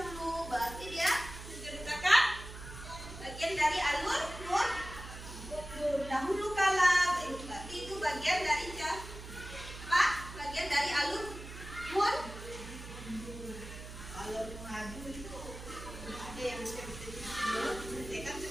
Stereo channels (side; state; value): right; noise; hum, 12 dB below the sound